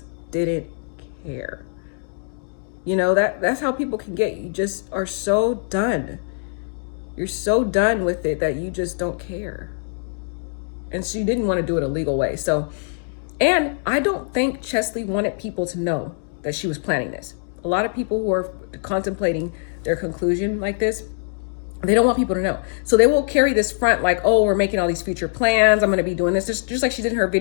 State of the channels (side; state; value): right; silent; digital silence